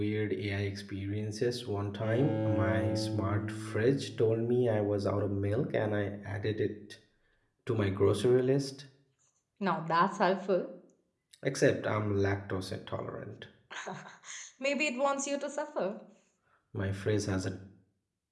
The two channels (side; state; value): both; identical; correlation 1.00